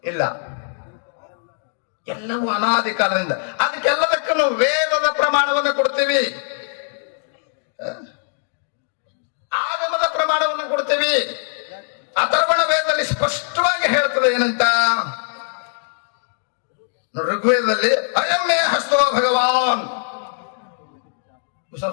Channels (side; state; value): right; silent; digital silence